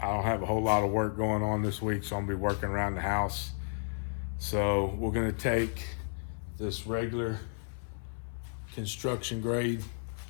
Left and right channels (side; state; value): right; silent; 56 dB below the other